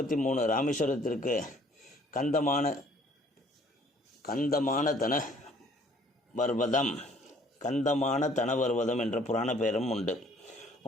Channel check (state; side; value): normal; both; correlation 0.58